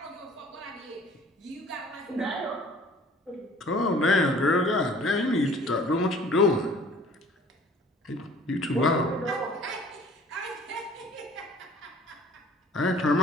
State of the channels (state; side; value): normal; both; correlation 0.51